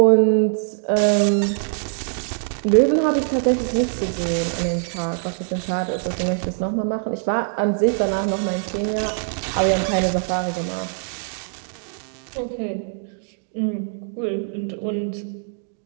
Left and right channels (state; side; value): silent; left; digital silence